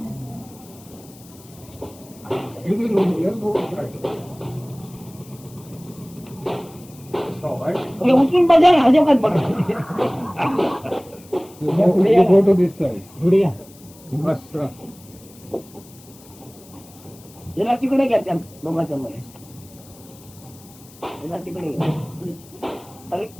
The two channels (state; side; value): noise; left; hiss, 23 dB below the sound